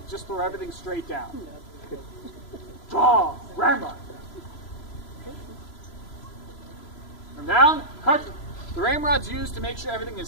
just throw everything straight down. Draw, ramrod. From down, cartridge. The ramrod's used to make sure everything is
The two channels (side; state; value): right; late; 3.0 ms